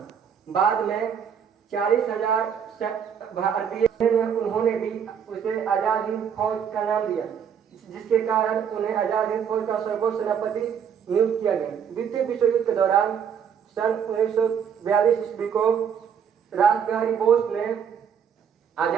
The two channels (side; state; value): left; quieter; 7.7 dB